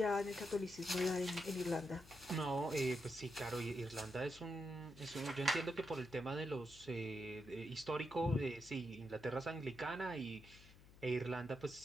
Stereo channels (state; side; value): noise; left; hum, 20 dB below the sound